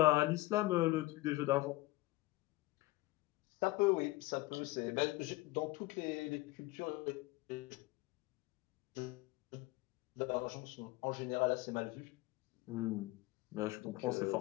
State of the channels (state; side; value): quieter; right; 20.2 dB